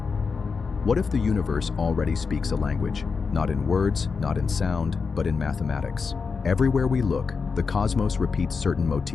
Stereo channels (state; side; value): quieter; right; 5.1 dB